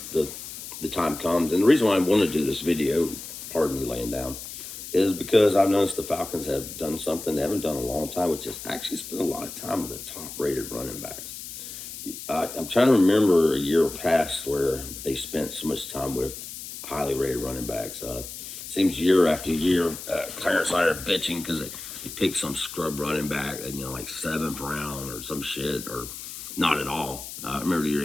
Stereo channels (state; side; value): noise; left; hiss, 10 dB below the sound